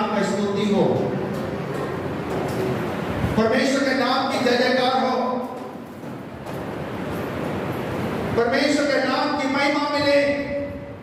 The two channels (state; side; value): identical; both; correlation 1.00